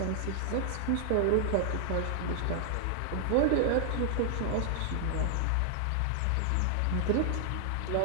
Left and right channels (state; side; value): different; both; correlation 0.00